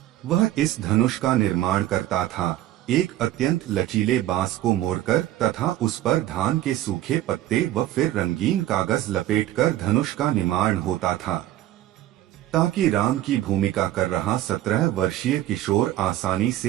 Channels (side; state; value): left; quieter; 14.0 dB